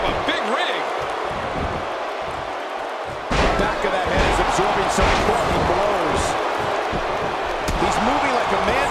a big rig. Back of that head is absorbing some quality blows. He's moving like a man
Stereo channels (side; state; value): both; identical; correlation 1.00